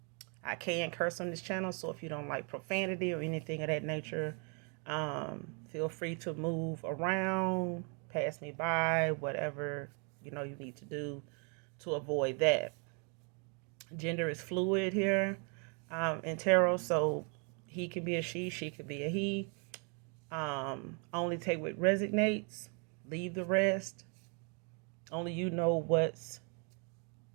I can curse on this channel, so if you don't like profanity or anything of that nature, feel free to move around, pass me by, whatever you need to do to avoid that. Gender is fluid here in tarot, so he can be a she could be a he. Only take what resonates, leave the rest. Only you know what's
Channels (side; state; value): left; quieter; 36.7 dB